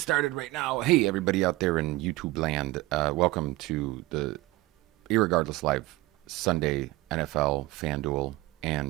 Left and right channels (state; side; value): quieter; left; 19.5 dB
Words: right now. Hey, everybody out there in YouTube land. Welcome to the Irregardless Live Sunday NFL, Fanduel,